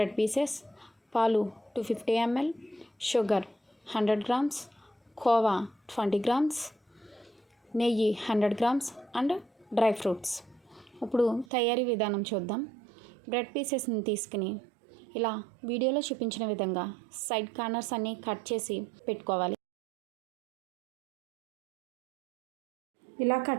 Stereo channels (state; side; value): drops out; left; at 11.5 s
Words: పీసెస్, పాలు 250 ml, sugar 100 grams, khoa 20 grams, నెయ్యి 100 grams అండ్ డ్రై ఫ్రూట్స్. ఇప్పుడు తయారీ విధానం చూద్దాం. బ్రెడ్ పీసెస్ని తీసుకుని ఇలా వీడియోలో చూపించిన విధంగా సైడ్ కార్నర్స్ అన్నీ కట్ చేసి పెట్టుకోవాలి. ఇలా